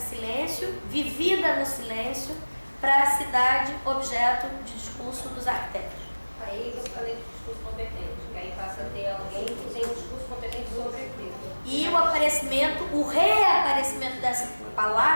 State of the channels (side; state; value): both; inverted; correlation -1.00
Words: silêncio, vivida no silêncio, para a cidade objeto de discurso dos arquitetos. Aí eu falei de discurso competente, que aí passa a ter alguém que tem um discurso competente sobre aquilo. E o reaparecimento dessa